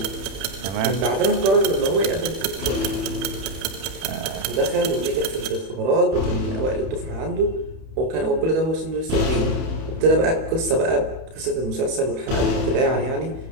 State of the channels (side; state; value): left; late; 31 ms